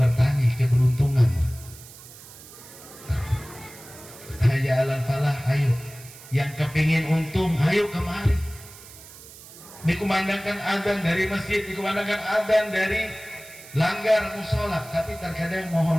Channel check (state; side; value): noise; right; hiss, 18 dB below the sound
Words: keberuntungan. Hayya 'alal falah, ayo. Yang kepingin untung, ayo kemari. Dikumandangkan adzan dari masjid, dikumandangkan adzan dari langgar musola, tapi terkadang